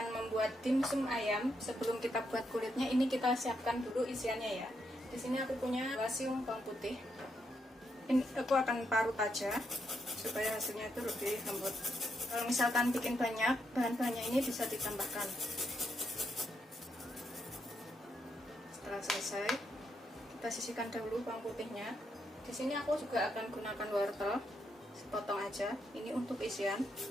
membuat dimsum ayam. Sebelum kita buat kulitnya, ini kita siapkan dulu isiannya ya. Di sini aku punya siung bawang putih. Ini aku akan parut aja supaya hasilnya itu lebih lembut. Kalau misalkan bikin banyak, bahan-bahannya ini bisa ditambahkan. Setelah selesai, kita sisihkan dahulu bawang putihnya. Di sini aku juga akan gunakan wortel, sepotong aja. Ini untuk isian.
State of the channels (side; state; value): both; normal; correlation 0.79